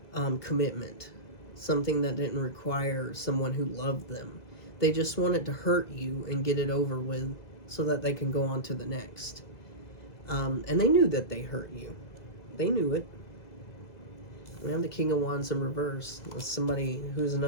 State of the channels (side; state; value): right; late; 2.0 ms